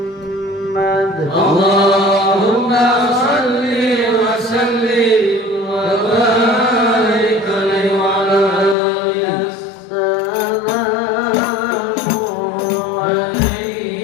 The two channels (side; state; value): right; drops out; at 8.8 s